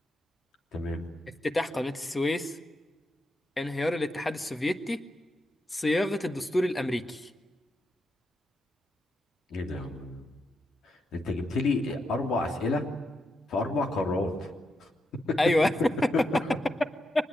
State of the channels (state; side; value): normal; both; correlation 0.84